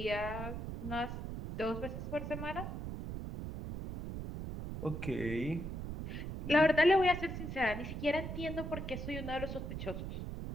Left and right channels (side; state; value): right; noise; rumble, 6 dB below the sound